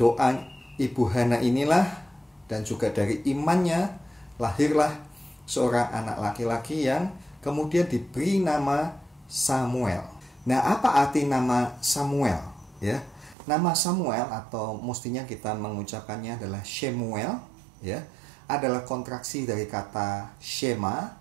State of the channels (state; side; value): drops out; left; at 13.4 s